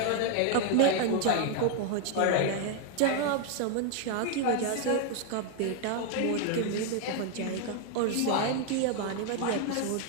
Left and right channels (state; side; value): different; both; correlation 0.00